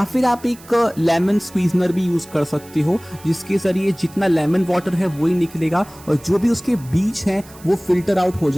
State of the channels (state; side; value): noise; right; hiss, 22 dB below the sound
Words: फिर आप एक लेमन स्क्वीजनर भी यूज़ कर सकते हो, जिसके ज़रिए जितना लेमन वाटर है वही निकलेगा और जो भी उसके बीज हैं वो फिल्टर आउट हो